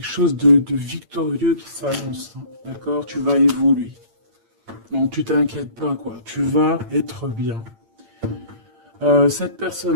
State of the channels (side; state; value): left; late; 8.8 ms